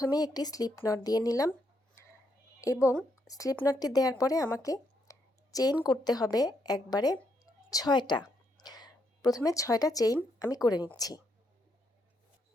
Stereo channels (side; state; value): both; normal; correlation 0.77